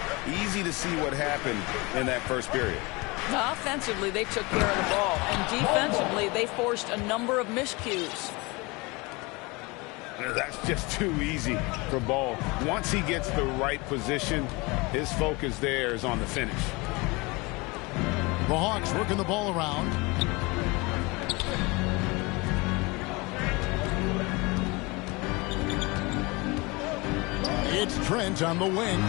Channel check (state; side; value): quieter; right; 25.4 dB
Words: Easy to see what happened in that first period. Offensively, they took care of the ball, and defensively, they forced a number of miscues. That's just too easy for Ball. Once he gets the right position, his focus there is on the finish. The Hawks working the ball around. It's Trent on the wing.